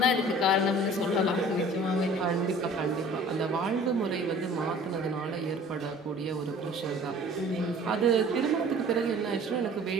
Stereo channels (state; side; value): normal; both; correlation 0.48